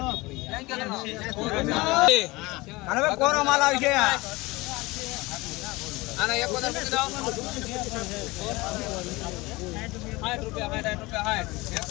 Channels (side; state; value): right; quieter; 22.2 dB